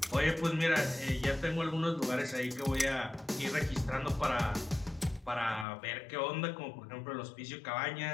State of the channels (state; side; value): drops out; right; at 5.7 s